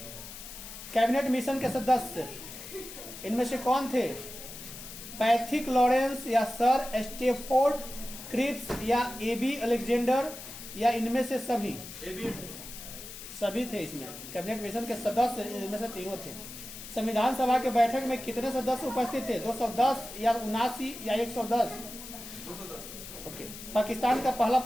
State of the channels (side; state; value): left; noise; hiss, 12 dB below the sound